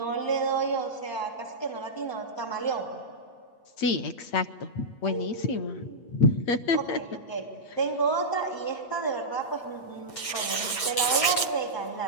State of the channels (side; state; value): right; late; 8.2 ms